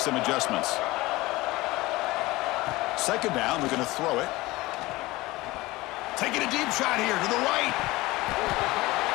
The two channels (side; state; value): right; quieter; 20.0 dB